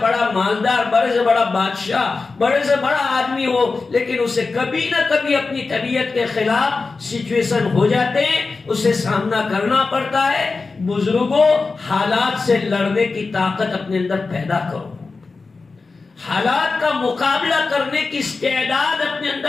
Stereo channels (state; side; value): quieter; right; 4.1 dB